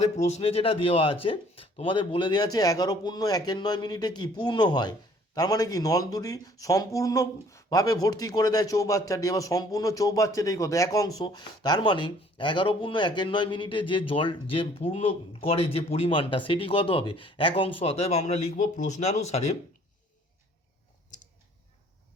প্রশ্নে যেটা দেওয়া আছে তোমাদের বলে দেওয়া আছে 11.1 মিনিটে কি পূর্ণ হয়, তার মানে কি নল দুটি সম্পূর্ণভাবে ভর্তি করে দেয় চৌবাচ্চাটি। এবার সম্পূর্ণ চৌবাচ্চাটাই কত 1 অংশ, তার মানে 11.1 মিনিটে যে জল যে পূর্ণ করে যে পরিমাণটা সেটি কত হবে 1 অংশ। অতএব আমরা লিখব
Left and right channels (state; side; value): normal; both; correlation 0.57